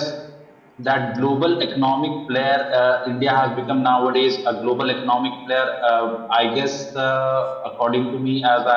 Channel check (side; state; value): both; identical; correlation 1.00